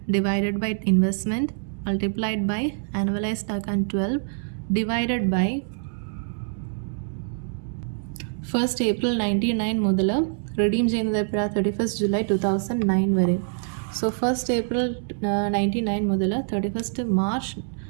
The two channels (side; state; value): left; silent; digital silence